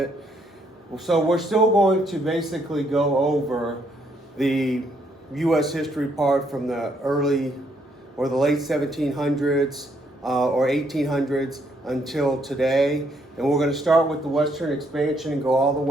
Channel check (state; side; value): normal; both; correlation 0.71